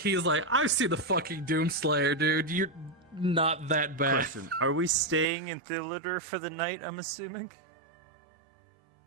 like, I've seen the fucking Doomslayer, dude. You're not that bad. Question: Are we staying in Thilitter for the night? I'm assuming.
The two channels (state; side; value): drops out; left; at 5.2 s